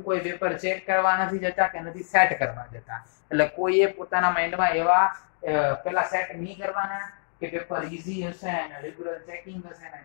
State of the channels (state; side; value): silent; right; digital silence